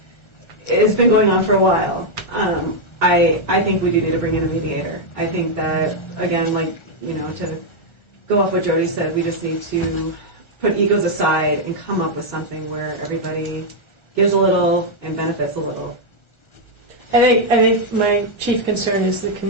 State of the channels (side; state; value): right; late; 1.4 ms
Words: has been going on for a while. I think we do need to bring in a mediator. I think that, again, to go off what Jody said, we just need to put egos aside and come up with something where everybody gives a little and benefits a little. I think my chief concern is the